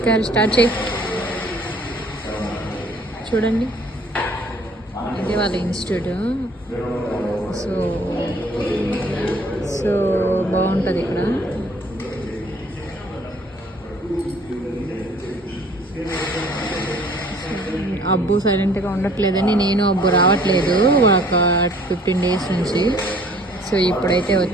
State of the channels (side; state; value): both; normal; correlation 0.56